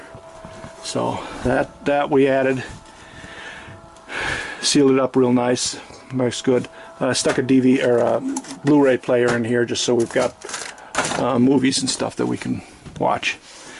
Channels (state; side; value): identical; both; correlation 1.00